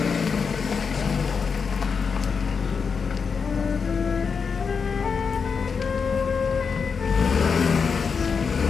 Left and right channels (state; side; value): quieter; right; 5.7 dB